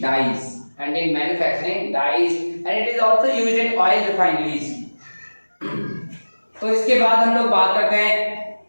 dyes and it is also used in oil refineries। तो इसके बाद हम लोग बात करते हैं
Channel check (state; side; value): inverted; both; correlation -1.00